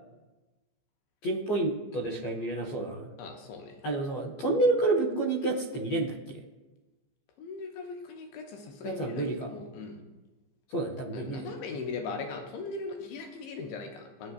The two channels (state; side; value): late; right; 14 ms